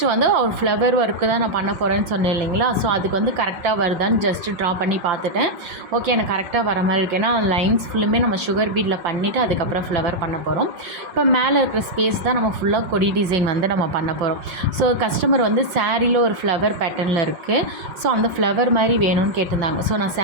வந்து ஒரு ஃப்ளவர் ஒர்க்கு தான் நான் பண்ண போகிறேன்னு சொன்னேன் இல்லைங்களா. ஸோ அதுக்கு வந்து கரெக்டாக வருதான்னு ஜஸ்ட்டு ட்ரா பண்ணி பார்த்துட்டேன். ஓகே, எனக்கு கரெக்டாக வர மாதிரி இருக்கு. ஏன்னா லைன்ஸ் ஃபுல்லுமே நம்ம சுகர் பீடில் பண்ணிவிட்டு அதுக்கப்புறம் ஃப்ளவர் பண்ண போகிறோம். இப்போ மேலே இருக்கிற ஸ்பேஸ் தான் நம்ம ஃபுல்லாக கொடி டிசைன் வந்து நம்ம பண்ண போகிறோம். ஸோ கஸ்டமர் வந்து சாரியில் ஒரு ஃப்ளவர் பேட்டர்னில் இருக்குது. ஸோ அந்த ஃப்ளவர் மாதிரி வேணும்னு கேட்டிருந்தாங்க. ஸோ நான்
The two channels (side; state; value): left; late; 5.5 ms